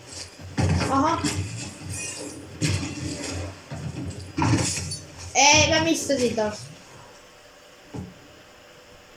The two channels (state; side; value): identical; both; correlation 1.00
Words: Aha. Ei, mä missasin tos.